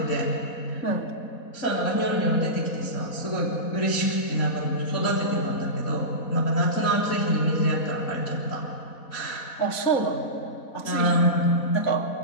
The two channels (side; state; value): right; late; 4.1 ms